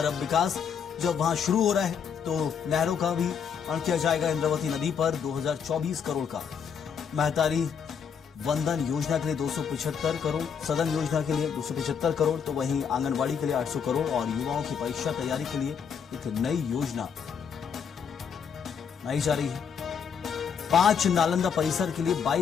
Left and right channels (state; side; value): quieter; right; 7.0 dB